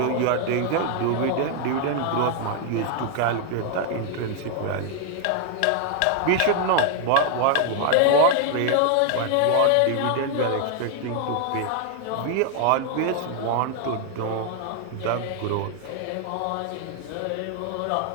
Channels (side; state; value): both; different; correlation 0.00